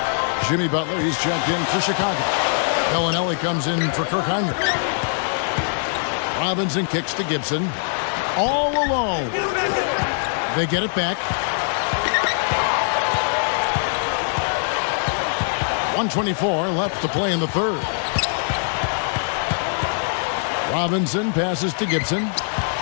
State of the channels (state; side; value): silent; right; 64 dB below the other